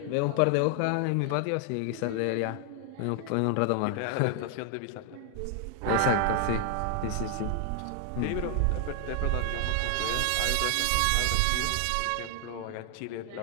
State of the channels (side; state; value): both; different; correlation 0.00